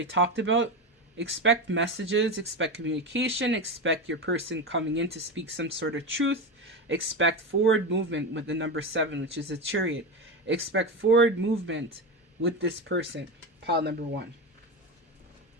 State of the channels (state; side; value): normal; both; correlation 0.18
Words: talked about, expect messages, expect communication, expect your person coming in to speak some sort of truth. Expect forward movement with the number 7, which is a chariot. Expect forward movement with this person, pile number 1.